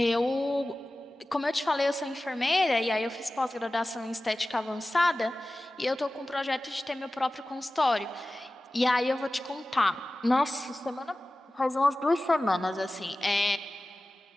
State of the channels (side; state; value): both; normal; correlation 0.96